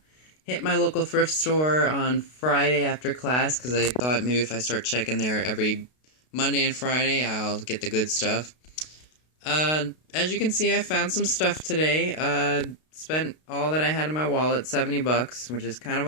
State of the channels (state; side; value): late; right; 32 ms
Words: Hit my local thrift store on Friday after class because I thought maybe if I start checking there every Monday and Friday, I'll get the good stuff. As you can see, I found some stuff today. Spent all that I had in my wallet, 70 bucks, which is kind of